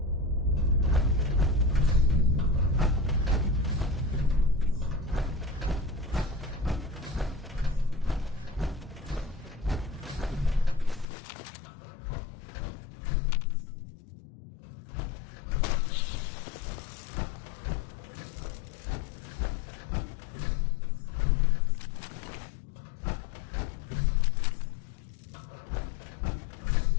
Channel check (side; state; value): right; drops out; at 11.1 s